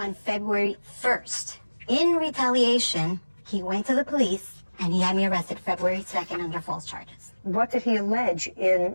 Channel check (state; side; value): inverted; both; correlation -1.00